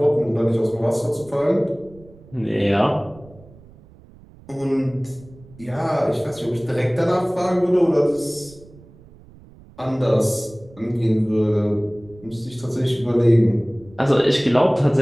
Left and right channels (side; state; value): right; noise; rumble, 23 dB below the sound